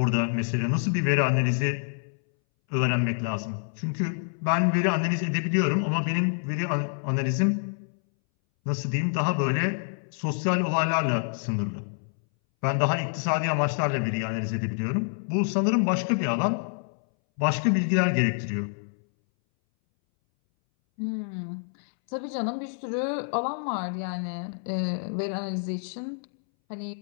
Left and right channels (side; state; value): right; silent; 60 dB below the other